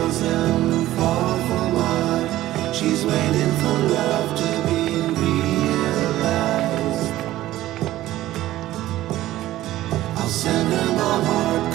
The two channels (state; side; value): quieter; left; 15.1 dB